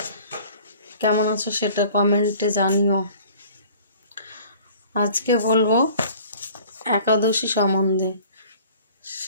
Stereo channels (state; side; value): inverted; both; correlation -0.49